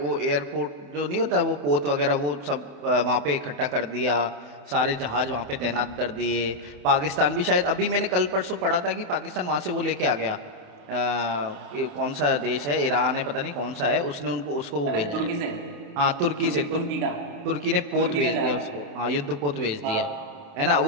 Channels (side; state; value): left; late; 28 ms